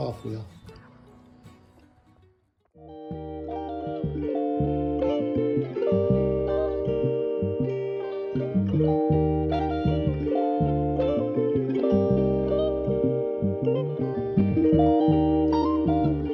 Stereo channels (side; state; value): both; identical; correlation 1.00